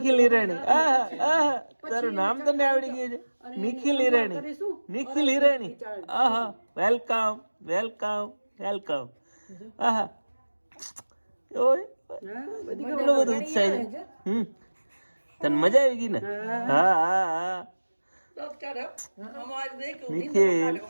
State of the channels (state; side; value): inverted; both; correlation -1.00